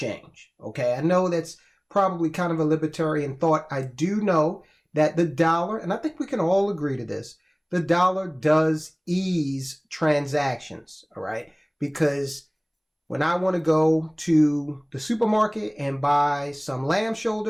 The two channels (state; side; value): identical; both; correlation 1.00